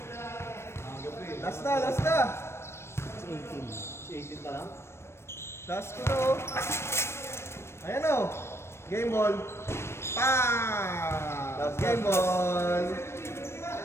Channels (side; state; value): right; late; 0.12 ms